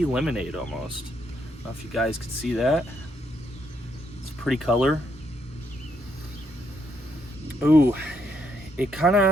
lemonade almost. I don't know if you guys can see that. It's a pretty color. Ooh, it kind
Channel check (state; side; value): normal; both; correlation 0.75